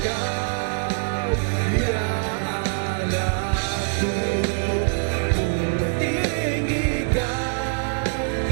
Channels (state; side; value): silent; left; digital silence